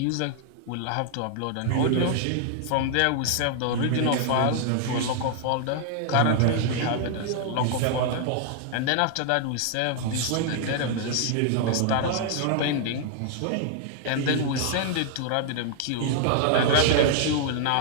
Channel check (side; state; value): both; different; correlation -0.01